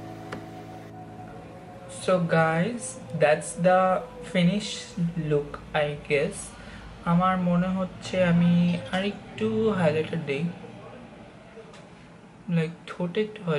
So guys, that's the finished look, I guess. আমার মনে হচ্ছে আমি আরেকটু হাইলাইটার দেই, লাইক ঠোঁটে একটু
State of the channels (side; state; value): both; identical; correlation 1.00